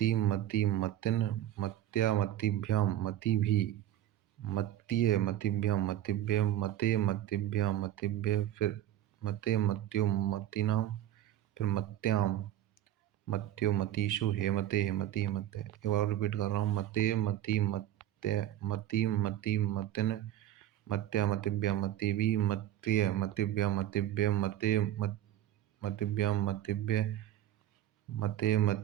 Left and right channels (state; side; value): quieter; left; 12.5 dB